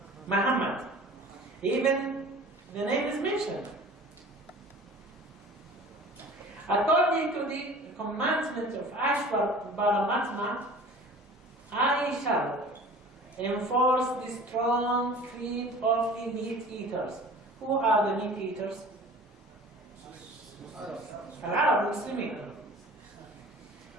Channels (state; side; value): normal; both; correlation 0.43